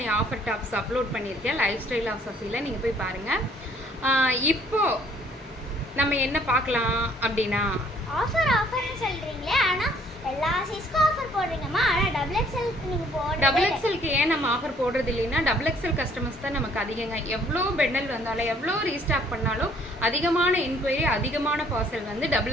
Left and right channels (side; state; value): both; normal; correlation 0.61